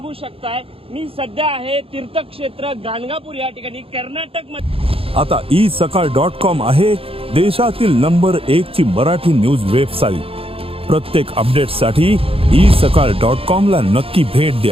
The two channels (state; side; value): late; left; 0.27 ms